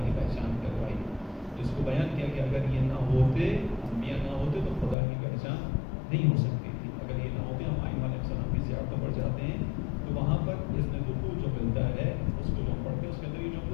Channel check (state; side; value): drops out; right; at 5.0 s